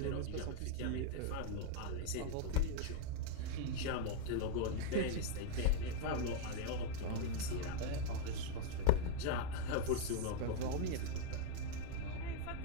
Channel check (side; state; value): both; different; correlation 0.00